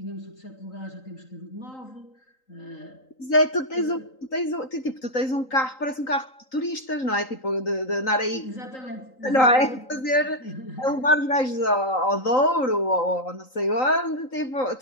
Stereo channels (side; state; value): right; late; 3.9 ms